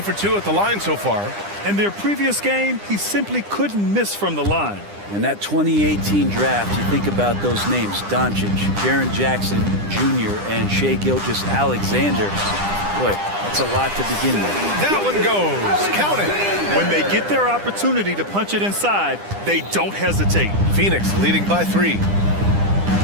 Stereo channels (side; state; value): left; late; 9.9 ms